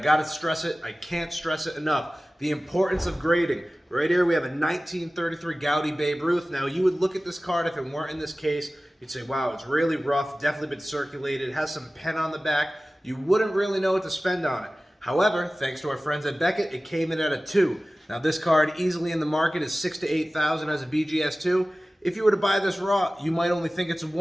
stress it. I can't stress it enough. The importance of grading. Right here we have a 1933 Gaudy Babe Ruth. Now you would look at this card if it weren't in this case. You'd say, wow, it's really rough, definitely been circulated, has some pen on the back. You wouldn't really know what to spend on it. However, thanks to our friends at Beckett, it came in at a 2. Now this card easily in the market is $6,000 to $8,000 as a BGS2. If you were to buy this raw, you might only think it's a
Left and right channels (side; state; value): both; normal; correlation 0.97